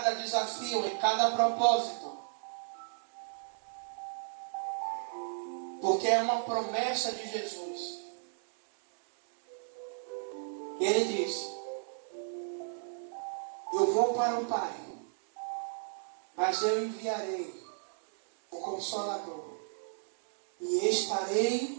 desafio, em cada propósito. Porque é uma promessa de Jesus. Ele diz: eu vou para o Pai, mas eu enviarei o Consolador, e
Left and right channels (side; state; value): left; silent; digital silence